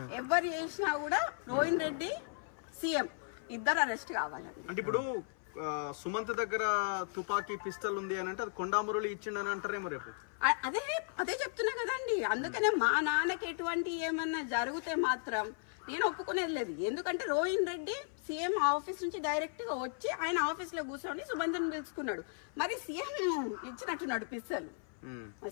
ఎవరు చేసినా కూడా రోహిన్ రెడ్డి, సీఎం ఇద్దరు అరెస్ట్ కావాలండి. అంటే ఇప్పుడు సుమంత్ దగ్గర తుపాకీ పిస్టల్ ఉంది అని అంటే అది కొండా మురళి ఇచ్చిండని అంటారేమో రేపు. అదే చెప్తున్నా కదండి. అందుకనే మా నాన్నకి ఎటువంటి ఏమన్నా జరిగితే మాత్రం నేను ఒప్పుకునేది లేదు. ఎందుకంటే రోహిన్ రెడ్డి సీఎం ఆఫీస్ నుంచి డైరెక్ట్ గా వచ్చి ఆయన ఆఫీస్ లో కూర్చొని సుమంత్ని పిలుచుకున్నాడు. మరి సీఎం ఇచ్చినట్టున్నాడు పిస్తల్.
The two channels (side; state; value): right; silent; 54 dB below the other